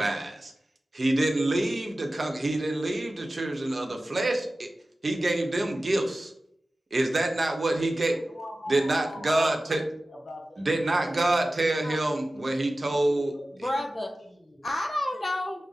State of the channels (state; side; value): normal; both; correlation 0.95